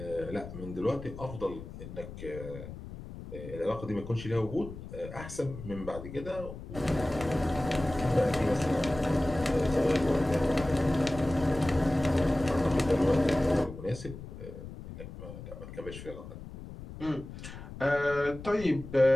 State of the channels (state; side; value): noise; left; rumble, 12 dB below the sound